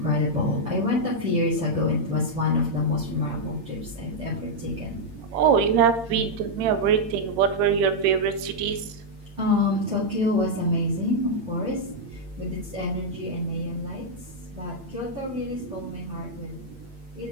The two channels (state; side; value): late; left; 8.8 ms